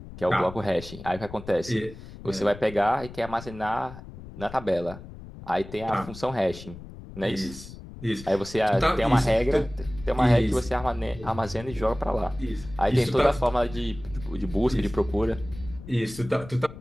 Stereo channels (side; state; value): left; noise; rumble, 15 dB below the sound